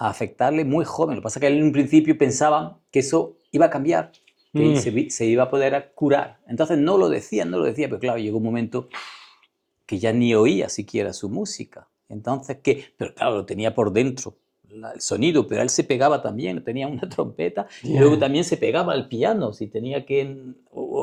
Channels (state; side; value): identical; both; correlation 1.00